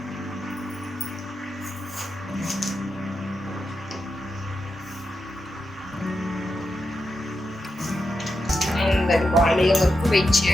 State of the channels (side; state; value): both; normal; correlation 0.87